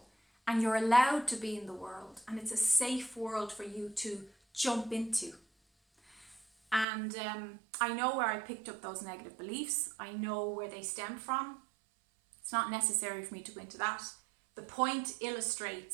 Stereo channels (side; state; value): left; drops out; at 6.9 s